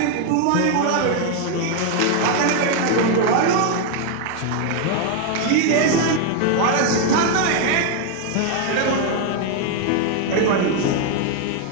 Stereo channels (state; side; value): different; both; correlation 0.01